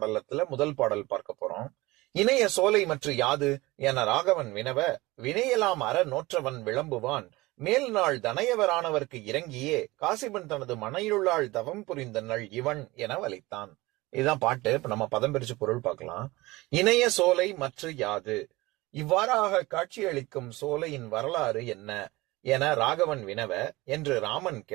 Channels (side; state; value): left; quieter; 20.9 dB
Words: முதல் பாடல் பார்க்க போறோம். இணைய சோலை மற்ற யாது என ராகவன் வினவ வினையெல்லாம் அற நோற்றவன் விளம்புவான் மேல் நாள் தனையவரானவர்க்கு இறங்கியே காசிபன் தனது மனையிலுள்ளாள் தவம் புரிந்த நள் இவன் என வலித்தான். இதுதான் பாட்டு. இப்ப நம்ம பதம் பிரிச்சு பொருள் பார்க்கலாம். இணைய சோலை மற்ற யாது, இவ்வாறாக காட்சியளிக்கும் சோலையின் வரலாறு என்ன என ராகவன் வினவ என்று ராமன்